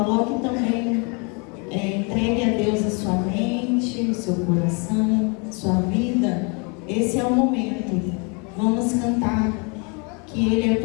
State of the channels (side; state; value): right; quieter; 33.4 dB